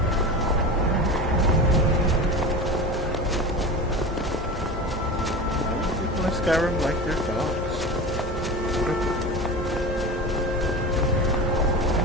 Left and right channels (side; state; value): both; normal; correlation 0.29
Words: People in Skyrim like their dogs.